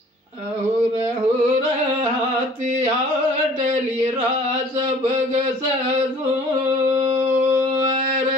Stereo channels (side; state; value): both; normal; correlation 0.51